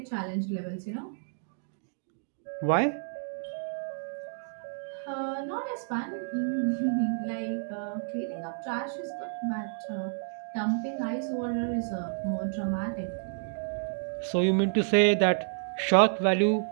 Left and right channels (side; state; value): left; silent; digital silence